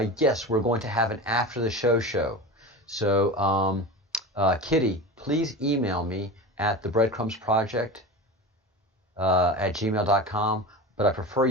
yes, we're going to have an after the show. So Kitty, please email me at the Breadcrumbs Project at gmail.com. But I prefer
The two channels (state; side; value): normal; both; correlation 0.29